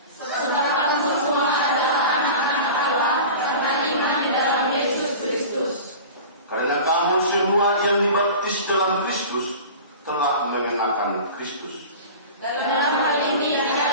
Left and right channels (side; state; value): both; inverted; correlation -0.35